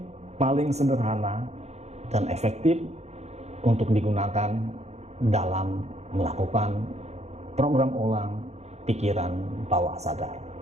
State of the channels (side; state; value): left; late; 0.32 ms